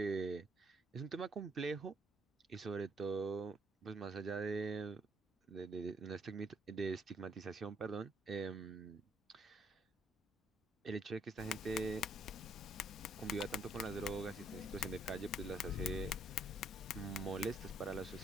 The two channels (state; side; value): normal; both; correlation 0.68